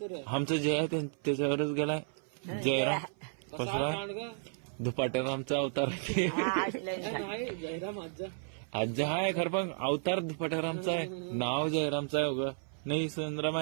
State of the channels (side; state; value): left; silent; 56 dB below the other